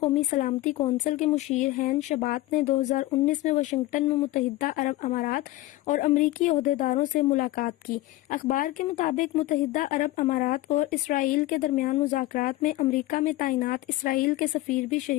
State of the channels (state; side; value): quieter; right; 17.3 dB